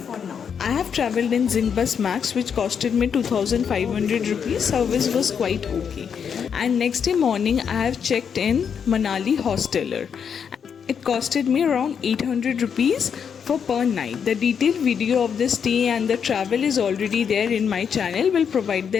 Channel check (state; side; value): quieter; right; 7.2 dB